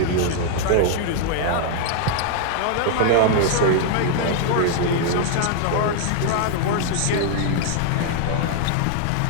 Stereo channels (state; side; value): different; both; correlation 0.00